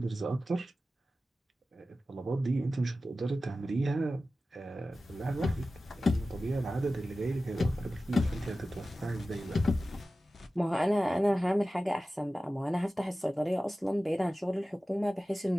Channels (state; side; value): normal; both; correlation 0.95